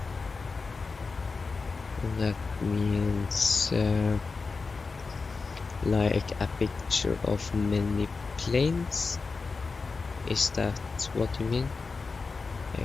That means like a picture of many planes. Is that what you mean?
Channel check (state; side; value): quieter; right; 4.4 dB